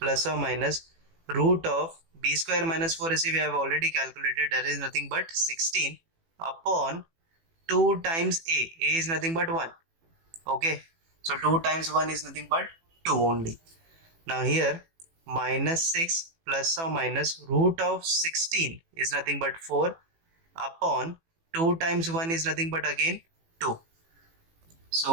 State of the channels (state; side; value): late; left; 18 ms